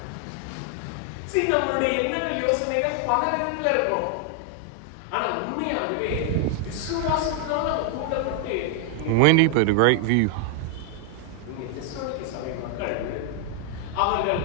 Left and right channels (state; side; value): different; both; correlation 0.00